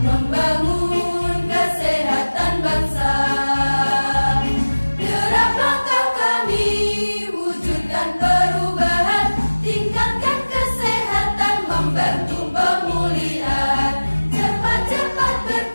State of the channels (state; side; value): inverted; both; correlation -1.00